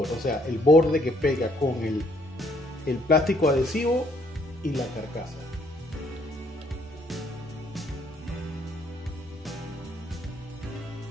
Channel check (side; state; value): both; normal; correlation 0.67